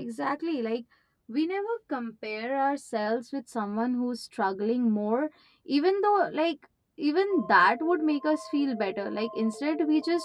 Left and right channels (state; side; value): identical; both; correlation 1.00